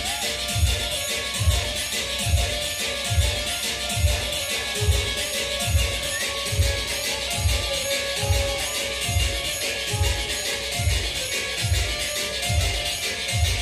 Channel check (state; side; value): identical; both; correlation 1.00